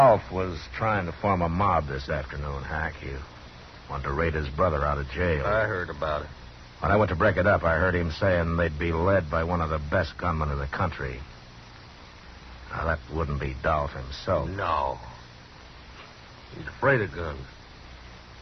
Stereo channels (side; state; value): both; identical; correlation 1.00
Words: was trying to form a mob this afternoon, Hack. He wanted to raid his brother out of jail. I heard about it. When I went to break it up, I heard him saying they'd be led by one of the best gunmen in the country. Now, that wouldn't be Dolph himself. No. He's afraid of guns.